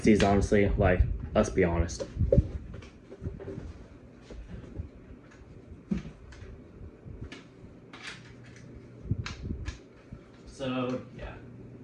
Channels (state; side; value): identical; both; correlation 1.00